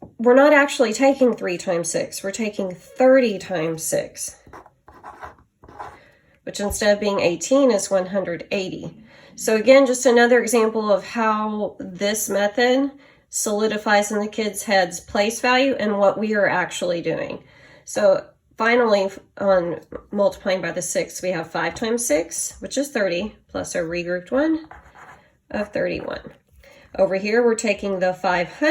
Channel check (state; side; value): identical; both; correlation 1.00